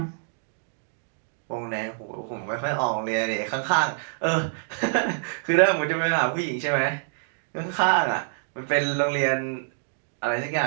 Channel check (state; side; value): silent; left; digital silence